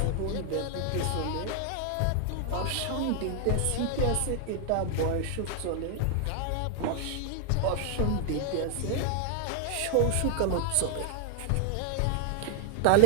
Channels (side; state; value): both; different; correlation 0.01